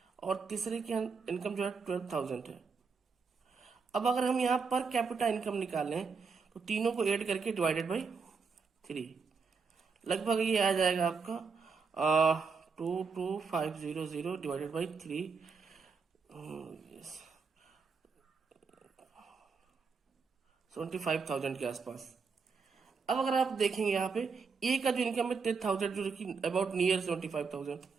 और तीसरे की इनकम जो है 12,000 है। अब अगर हम यहाँ पर कैपिटा इनकम निकालें तो तीनों को ऐड करके डिवाइडेड बाई 3, लगभग ये आ जाएगा आपका 22500 डिवाइडेड बाई 3, 75,000 के आसपास। अब अगर आप देखेंगे यहाँ पे ए का जो इनकम है 10,000 जो कि अबाउट नियर 75,000,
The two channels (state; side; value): quieter; left; 5.2 dB